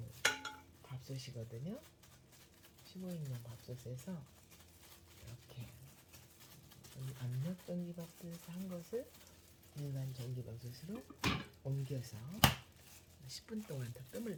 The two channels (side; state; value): both; identical; correlation 1.00